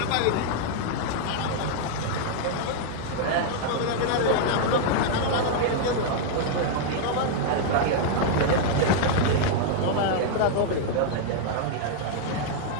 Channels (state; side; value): different; both; correlation -0.01